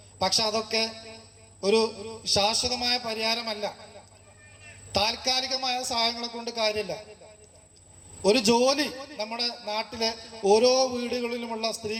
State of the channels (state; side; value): identical; both; correlation 1.00